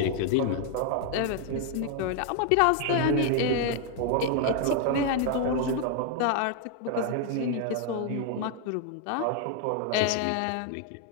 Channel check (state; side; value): different; both; correlation 0.00